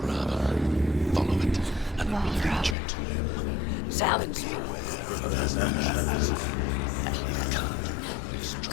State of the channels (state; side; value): drops out; right; at 2.8 s